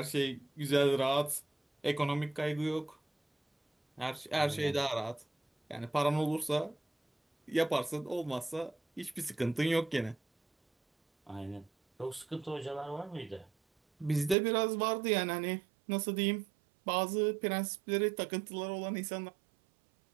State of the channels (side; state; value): left; drops out; at 14.4 s